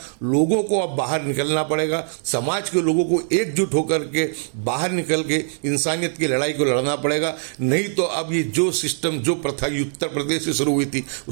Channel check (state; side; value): silent; left; digital silence